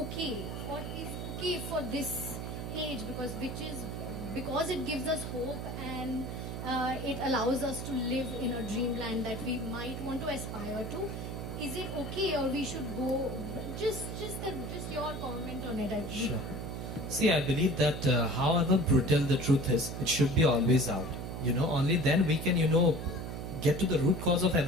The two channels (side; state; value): right; noise; hum, 6 dB below the sound